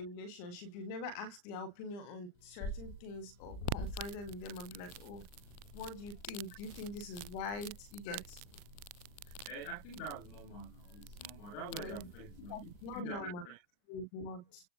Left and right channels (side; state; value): right; late; 39 ms